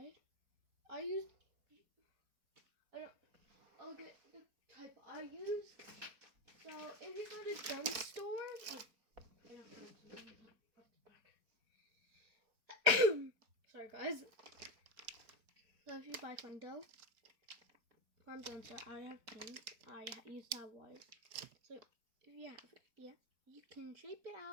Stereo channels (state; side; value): late; left; 4.4 ms